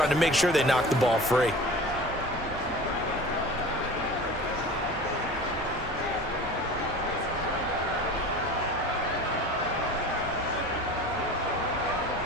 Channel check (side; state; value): both; normal; correlation 0.38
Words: to make sure they knock the ball free.